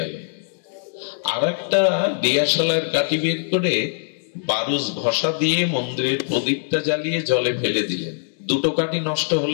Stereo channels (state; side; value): silent; right; digital silence